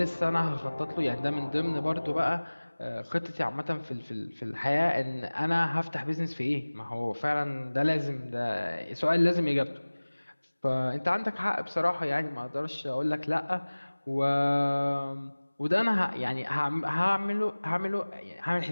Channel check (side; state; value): both; inverted; correlation -1.00